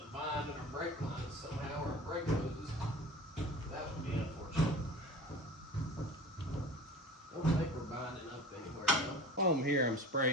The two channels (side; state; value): both; normal; correlation 0.39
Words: bind in our brake lines somehow, or a brake hoses. That would be unfortunate. Don't think we're binding up anywhere though. While I'm here, I'm